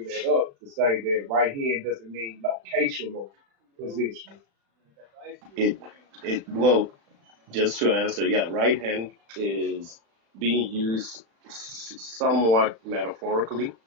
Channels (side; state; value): left; late; 36 ms